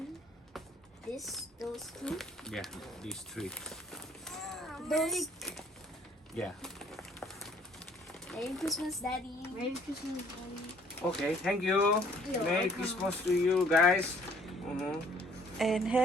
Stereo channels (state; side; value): normal; both; correlation 0.59